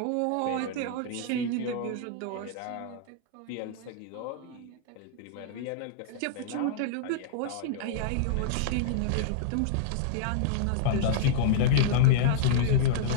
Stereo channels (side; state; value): both; different; correlation -0.02